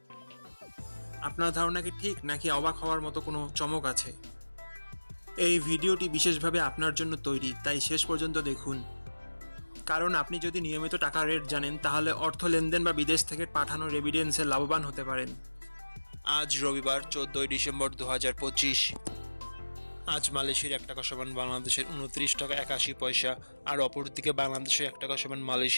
আপনার ধারণা কি ঠিক, নাকি অবাক হওয়ার মতো কোনো চমক আছে? এই ভিডিওটি বিশেষভাবে আপনার জন্য তৈরি, তাই শেষ পর্যন্ত দেখুন। কারণ আপনি যদি নিয়মিত টাকার রেট জানেন, তাহলে অর্থ লেনদেন বা বিদেশ থেকে পাঠানো রেমিটেন্সে লাভবান হতে পারেন। আজ রবিবার 14ই ডিসেম্বর 2025। আজ মালয়েশিয়ার 1 টাকা সমান বাংলাদেশের 29 টাকা 81 পয়সা, আর অপরদিকে বাংলাদেশের 1 টাকা সমান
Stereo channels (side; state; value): both; inverted; correlation -1.00